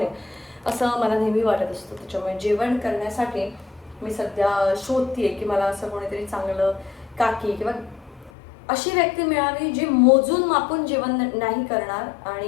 असं मला नेहमी वाटत असतं. त्याच्यामुळे जेवण करण्यासाठी मी सध्या शोधतीये की मला असं कोणीतरी चांगलं काकी किंवा अशी व्यक्ती मिळावी जी मोजून मापून जेवण नाही करणार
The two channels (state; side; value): drops out; right; at 8.3 s